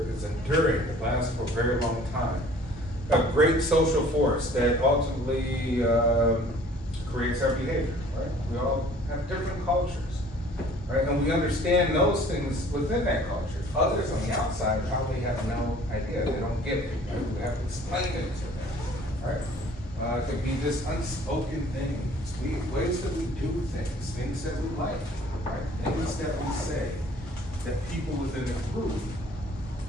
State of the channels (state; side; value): normal; both; correlation 0.52